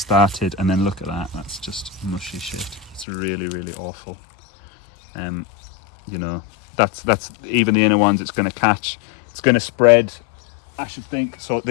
and then look at that, that's just mushy shit. It's really, really awful. You know, that's even the inner ones it's going to catch. It's going to spread, I should think. So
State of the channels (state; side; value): drops out; right; at 3.1 s